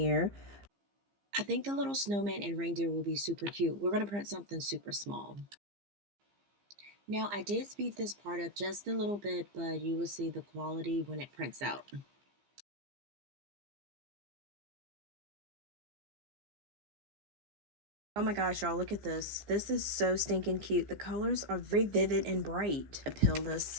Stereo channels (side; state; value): left; late; 15 ms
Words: I think the little snowman and reindeer will be super cute. We're going to print something super small. Now, I did speed this part up just a little bit, but you will see the quality when it prints out. Oh my gosh, y'all, look at this. This is so stinking cute. The colors are very vivid and bright. I peel